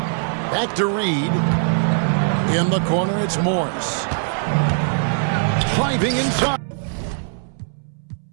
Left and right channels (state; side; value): silent; left; 65 dB below the other